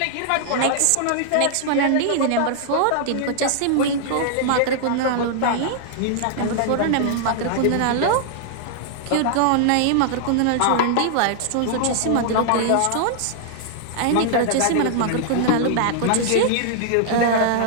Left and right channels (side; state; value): both; different; correlation -0.01